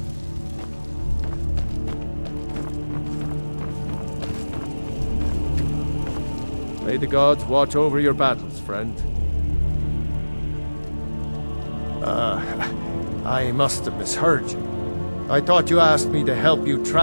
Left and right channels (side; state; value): both; inverted; correlation -1.00